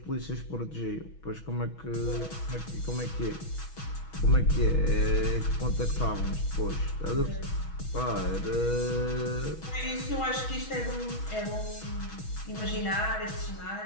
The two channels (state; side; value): late; right; 6.2 ms